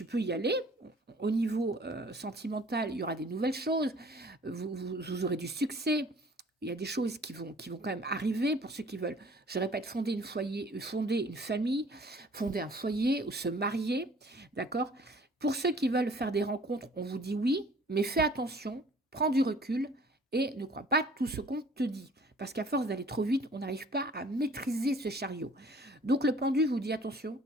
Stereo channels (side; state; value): both; normal; correlation 0.53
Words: y aller. Au niveau sentimental, il y aura des nouvelles choses. Vous aurez du succès. Il y a des choses qui vont quand même arriver pour ceux qui veulent, je répète, fonder une famille, fonder un foyer ou se marier, d'accord? Pour ceux qui veulent faire des rencontres, on vous dit oui, mais fais attention, prends du recul et ne crois pas tout ce qu'on te dit. Parce qu'à force d'aller trop vite, on n'arrive pas à maîtriser ce chariot. Donc le pendu vous dit attention,